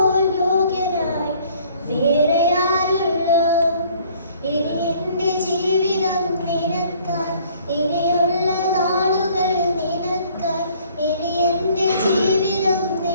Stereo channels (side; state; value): both; inverted; correlation -0.58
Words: യോഗ്യനായി വേറെയാരുള്ളൂ. ഇനി എൻ്റെ ജീവിതം നിനക്കായി, ഇനിയുള്ള നാളുകൾ നിനക്കായി, ഇനി എൻ്റെ ജീവിതം